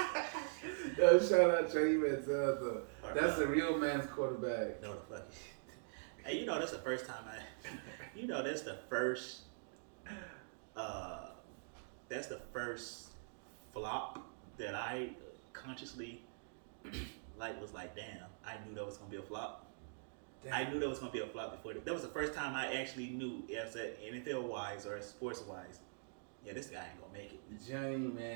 Yo, shout out Johnny Manziel though. That's a real man's quarterback. No, the fuck. Hey, that's the first time that's the first. That's the first flop that I consciously was like, damn, I knew that was gonna be a flop. Damn. I knew that was gonna be a flop before. That was the first time I actually knew, as a NFL wise or sports wise, yeah, this guy ain't gonna make it. Johnny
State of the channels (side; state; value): left; silent; digital silence